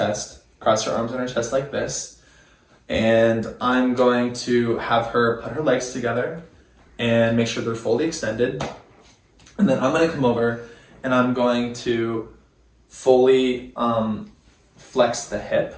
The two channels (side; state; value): both; identical; correlation 1.00